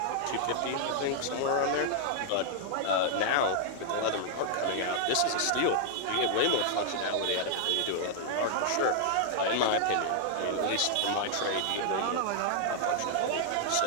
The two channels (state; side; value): different; both; correlation -0.01